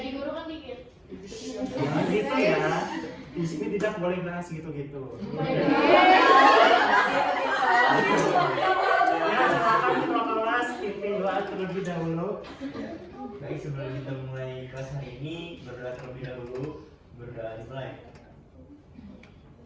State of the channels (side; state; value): both; identical; correlation 1.00